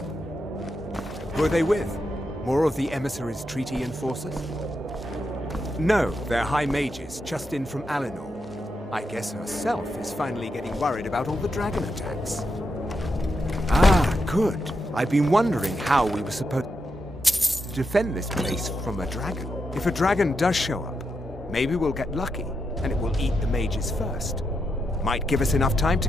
Who are they with? More of the emissaries' treaty enforcers? No, they're high mages, just in from Alinor. I guess herself is finally getting worried about all the dragon attacks. Ah, good. I've been wondering how we were supposed to defend this place from a dragon. If a dragon does show up, maybe we'll get lucky, and it will eat the mages first. Might give us enough time to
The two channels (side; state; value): both; normal; correlation 0.84